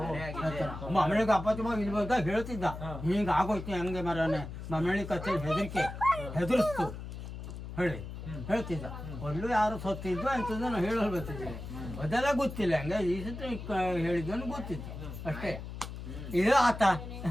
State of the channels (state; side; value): noise; left; hum, 9 dB below the sound